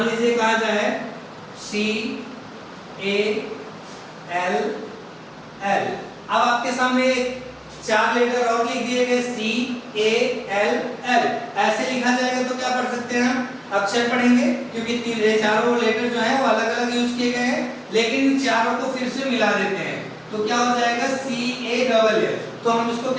लीजिए कहा जाए सी ए एल एल। अब आपके सामने 4 लेटर और लिख दिए गए सी ए एल एल, ऐसे लिखा जाएगा तो क्या पढ़ सकते हैं हम? अक्षर पढ़ेंगे, क्योंकि चारों लेटर जो है वो अलग अलग यूज किए गए हैं, लेकिन इन चारों को फिर से मिला देते हैं तो क्या हो जाएगा? सी ए डबल एल। तो हम इसको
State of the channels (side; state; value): both; identical; correlation 1.00